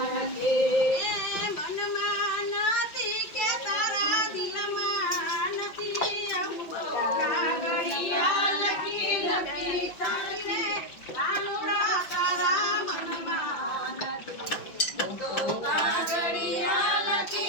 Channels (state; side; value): late; right; 5.6 ms